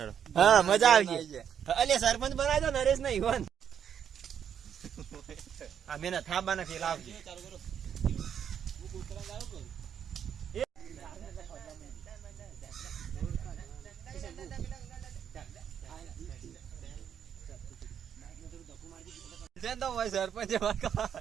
હા મજા આવશે. અલે સરપંચ બનાવી દો નરેશ ને ઈવન અમે ના થાબાના ફેલા આવજે.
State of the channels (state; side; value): quieter; left; 8.5 dB